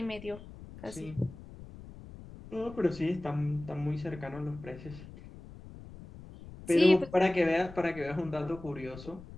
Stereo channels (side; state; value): left; noise; rumble, 16 dB below the sound